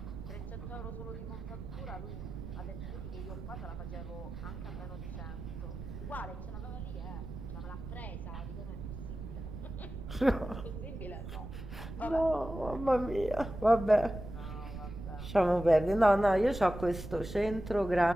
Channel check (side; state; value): right; noise; rumble, 9 dB below the sound